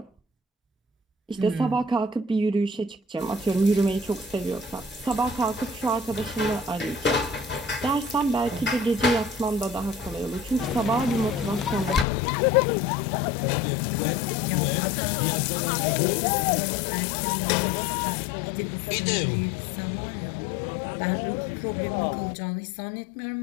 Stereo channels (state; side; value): drops out; right; at 12.1 s